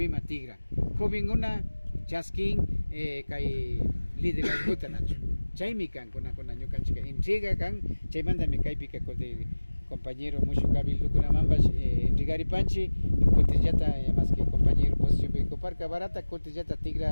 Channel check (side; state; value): both; inverted; correlation -1.00